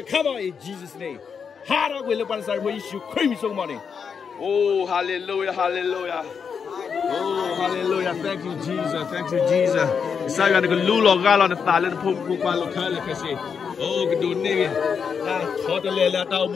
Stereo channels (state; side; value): quieter; right; 6.4 dB